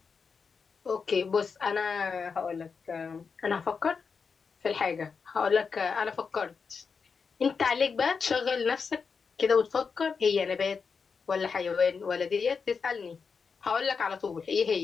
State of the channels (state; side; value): quieter; right; 5.5 dB